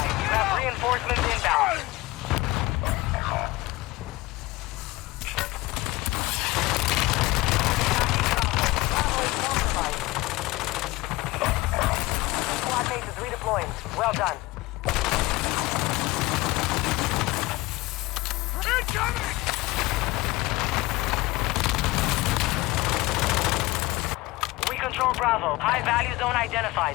You have reinforcements inbound. Bravo is compromised. Squad mate is redeploying. Well done. Incoming! We control Bravo. High value zone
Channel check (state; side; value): quieter; right; 20.9 dB